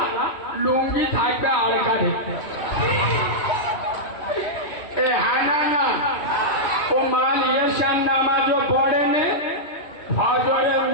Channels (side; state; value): right; late; 3.1 ms